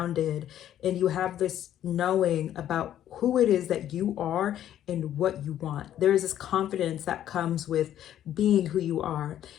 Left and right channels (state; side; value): quieter; right; 11.3 dB